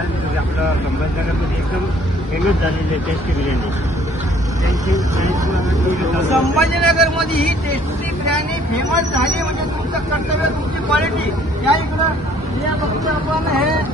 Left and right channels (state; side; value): normal; both; correlation 0.59